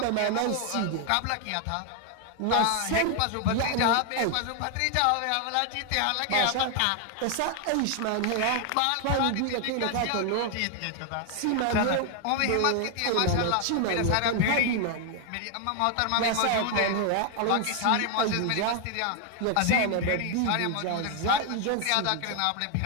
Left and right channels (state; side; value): different; both; correlation 0.00